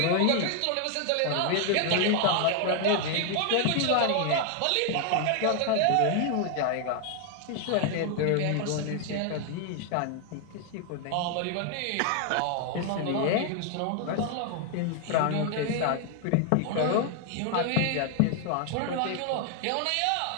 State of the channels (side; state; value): both; different; correlation 0.00